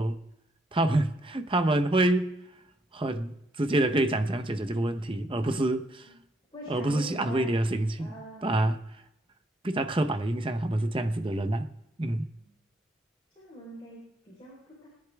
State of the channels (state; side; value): normal; both; correlation 0.74